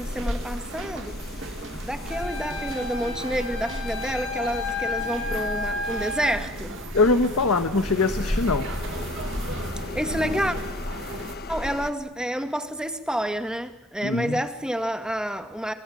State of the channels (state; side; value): normal; both; correlation 0.54